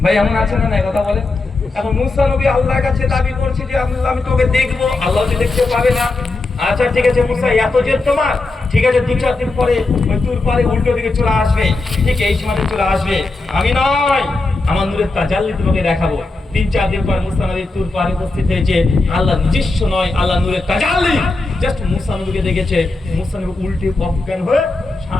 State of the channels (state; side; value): quieter; right; 3.3 dB